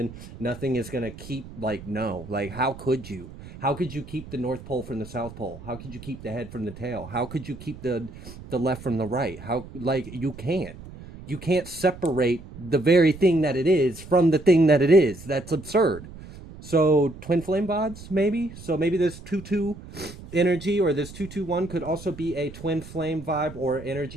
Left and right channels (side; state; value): right; noise; rumble, 15 dB below the sound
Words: Nothing is going to keep, like, no. Like, how could you? How could you keep the North Pole from the South Pole? How could you keep the head from the tail? How could you keep the left from the right? How, like, you can't. You can't separate the very thing that it is from the thing that it is. That's absurd. So twin flame vibes, maybe. So maybe this 2-2 energy, or this 221 could also be a twin flame vibe or